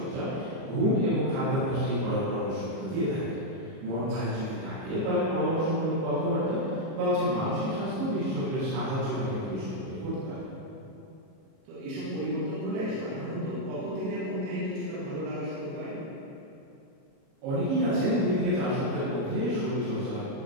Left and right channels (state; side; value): late; left; 37 ms